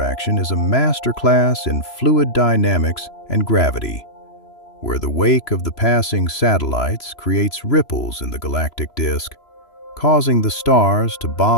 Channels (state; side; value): late; right; 3.0 ms